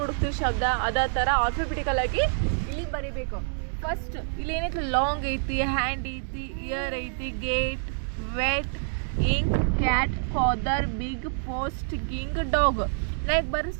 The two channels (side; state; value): left; silent; digital silence